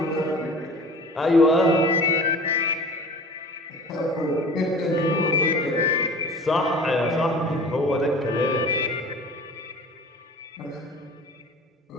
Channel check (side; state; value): both; normal; correlation 0.41